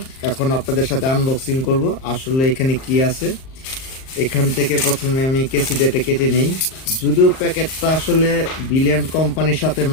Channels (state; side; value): late; right; 38 ms